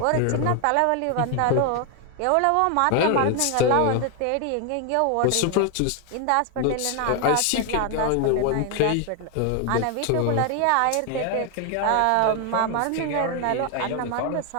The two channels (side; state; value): both; different; correlation 0.01